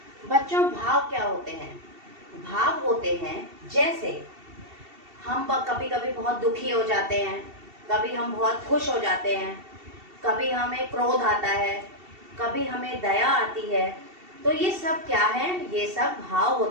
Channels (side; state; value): left; late; 2.7 ms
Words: बच्चों, भाव क्या होते हैं? भाव होते हैं जैसे हम कभी कभी बहुत दुखी हो जाते हैं, कभी हम बहुत खुश हो जाते हैं, कभी हमें क्रोध आता है, कभी हमें दया आती है। तो ये सब क्या है? ये सब भाव